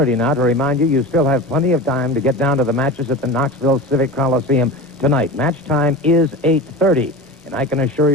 now to remind you, you still have plenty of time to get down to the matches at the Knoxville Civic Coliseum tonight. Match time is 8:30, and I can assure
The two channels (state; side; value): normal; both; correlation 0.30